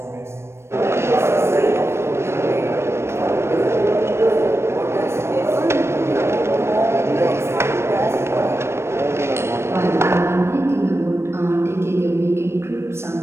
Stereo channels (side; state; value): left; late; 0.13 ms